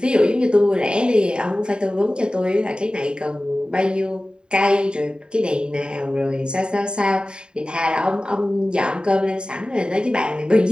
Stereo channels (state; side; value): late; left; 0.050 ms